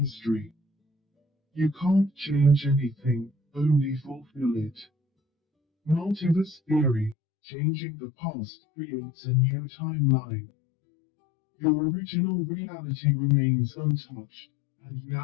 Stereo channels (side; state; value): right; drops out; at 7.2 s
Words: You can't change anything, only fulfill it. Multiverse theory. Changing the past creates a new timeline. Your original reality remains untouched, and